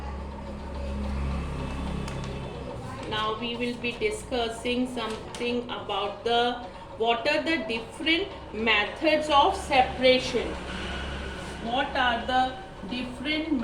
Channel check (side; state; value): both; identical; correlation 1.00